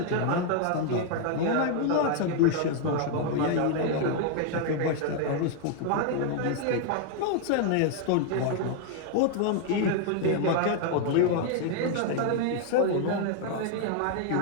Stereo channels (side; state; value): both; different; correlation 0.00